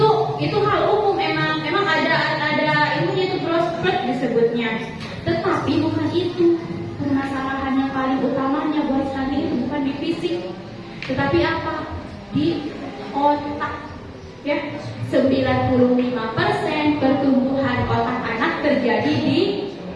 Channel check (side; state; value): both; identical; correlation 1.00